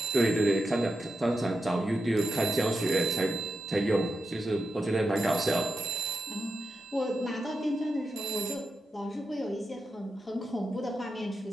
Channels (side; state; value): both; normal; correlation 0.88